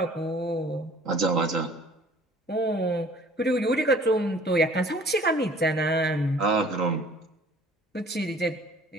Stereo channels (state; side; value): normal; both; correlation 0.52